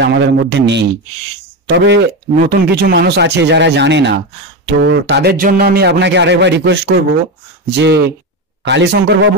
আমাদের মধ্যে নেই। তবে নতুন কিছু মানুষ আছে যারা জানে না, তো তাদের জন্য আমি আপনাকে আরেকবার রিকোয়েস্ট করব যে কালীশঙ্কর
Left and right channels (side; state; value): both; normal; correlation 0.15